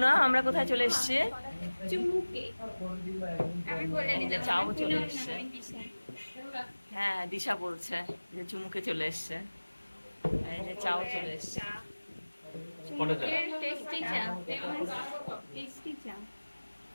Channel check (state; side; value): inverted; both; correlation -1.00